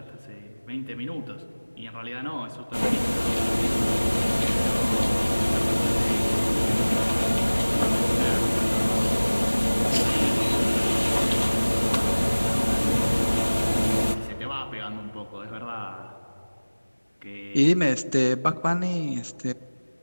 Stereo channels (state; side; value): inverted; both; correlation -1.00